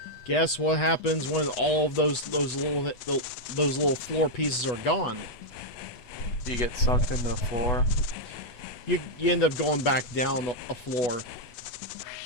Guess what happens when all of those little floor pieces are gone? You get sucked into the floor. You end up going back down a floor.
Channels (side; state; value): right; late; 8.2 ms